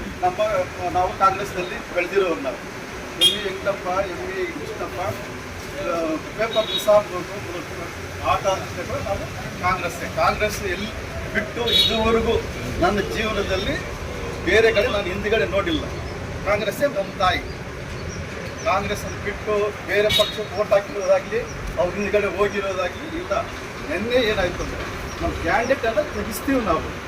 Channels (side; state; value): both; identical; correlation 1.00